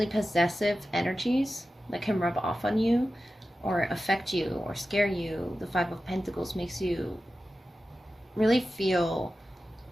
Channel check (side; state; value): both; normal; correlation 0.93